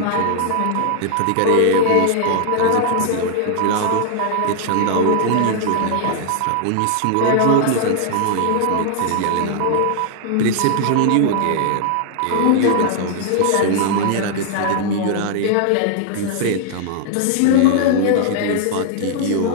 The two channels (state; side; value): different; both; correlation 0.00